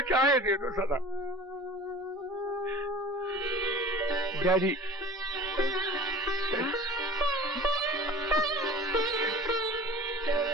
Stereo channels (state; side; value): normal; both; correlation 0.40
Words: चाहे दे दो सजा। डैडी,